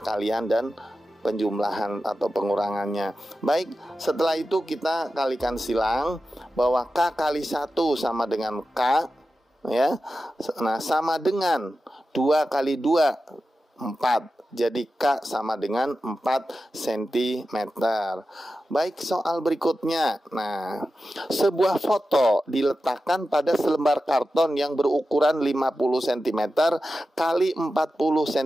dan penjumlahan atau pengurangannya. Baik, setelah itu kita kalikan silang bahwa K kali 1 sama dengan K ya. Nah, sama dengan 2 kali 2 4. Jadi K sama dengan 4 cm. Baik, soal berikutnya. Nah, sebuah foto diletakkan pada selembar karton yang berukuran 50 cm kali 40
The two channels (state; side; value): normal; both; correlation 0.92